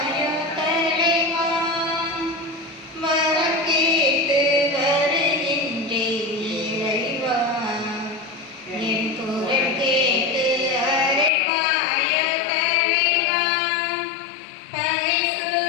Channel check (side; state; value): right; drops out; at 11.3 s